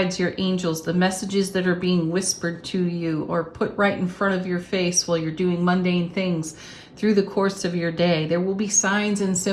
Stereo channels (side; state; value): both; identical; correlation 1.00